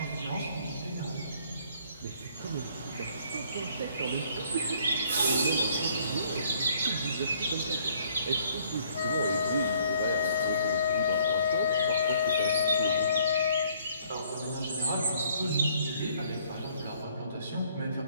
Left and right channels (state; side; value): inverted; both; correlation -0.62